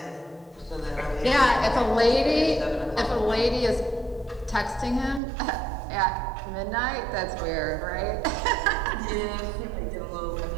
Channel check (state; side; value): drops out; left; at 5.2 s